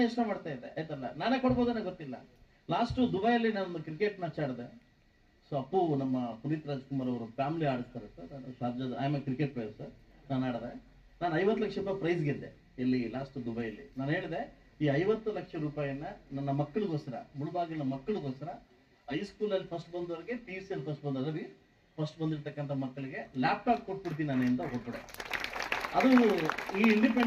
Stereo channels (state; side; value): identical; both; correlation 1.00